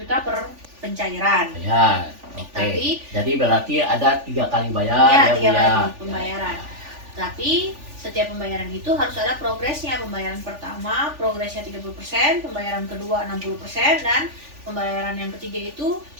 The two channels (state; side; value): late; left; 3.4 ms